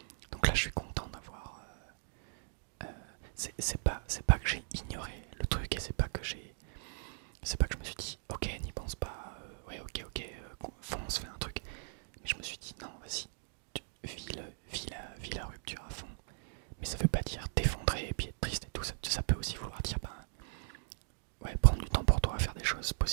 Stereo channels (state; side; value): silent; left; digital silence